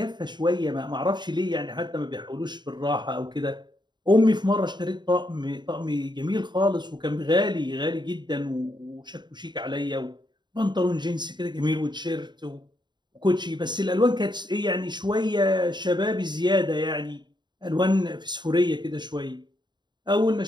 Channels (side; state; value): left; late; 0.21 ms